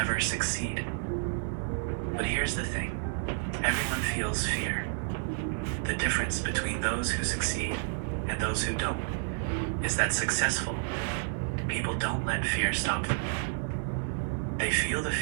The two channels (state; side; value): silent; left; digital silence